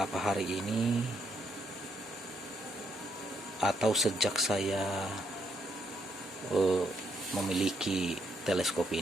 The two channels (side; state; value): both; normal; correlation 0.75